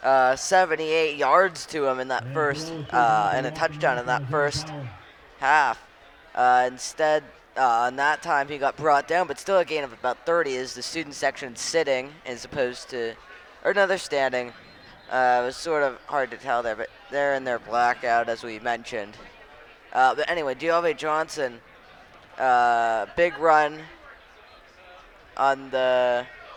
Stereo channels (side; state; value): both; identical; correlation 1.00